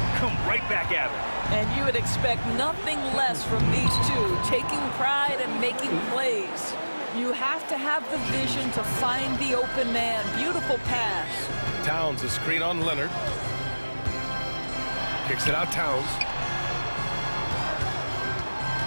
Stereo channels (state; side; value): inverted; both; correlation -1.00